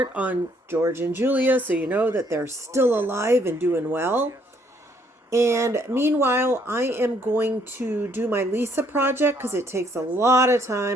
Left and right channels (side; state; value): both; normal; correlation 0.67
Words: on George and Julia so you know that they're still alive and doing well. And meanwhile, I am going to do my Lisa project because it takes a lot of